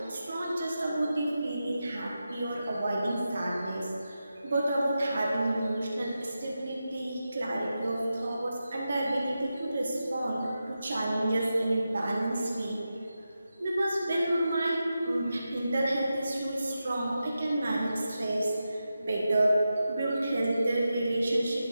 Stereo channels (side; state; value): both; inverted; correlation -0.90